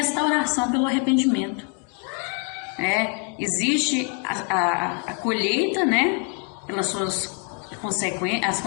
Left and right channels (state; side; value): quieter; right; 39.5 dB